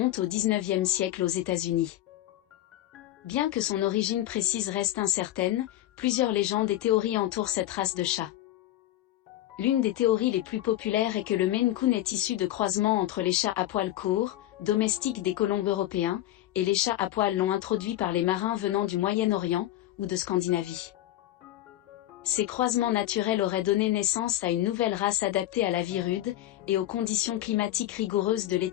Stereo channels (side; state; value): right; quieter; 14.1 dB